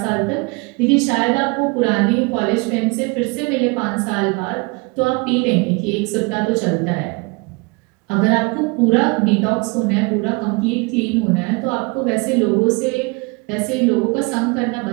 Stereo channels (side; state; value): left; quieter; 28.7 dB